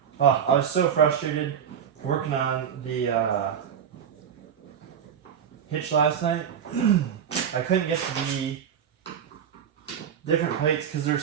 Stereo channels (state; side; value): quieter; left; 8.3 dB